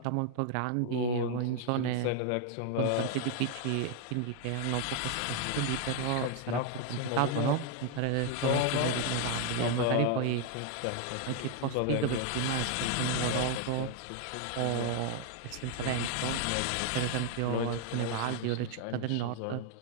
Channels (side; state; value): both; different; correlation 0.00